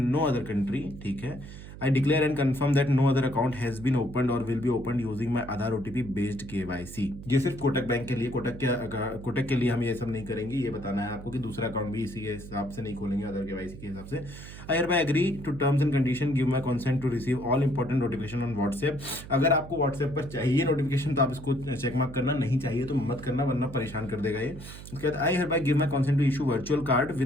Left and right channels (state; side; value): noise; right; hum, 14 dB below the sound